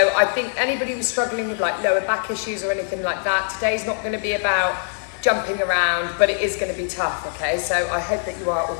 I think anybody who's struggling with like lower back issues or anything like that, today's not going to be about jumping around, but it is going to be tough, okay? So I hope that you are all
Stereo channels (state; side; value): silent; right; digital silence